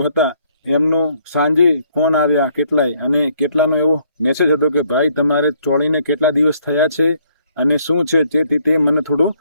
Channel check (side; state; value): both; inverted; correlation -0.67